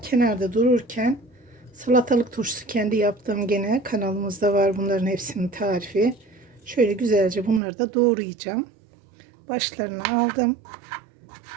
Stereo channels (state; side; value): drops out; left; at 7.6 s